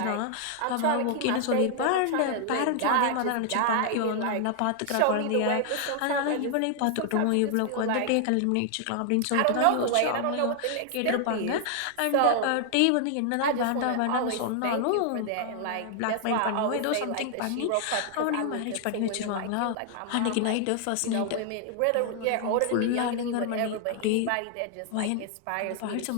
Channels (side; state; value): both; different; correlation 0.00